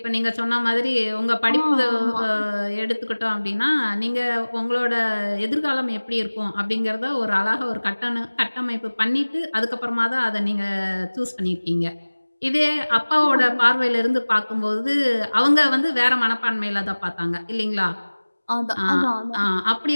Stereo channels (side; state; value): both; inverted; correlation -1.00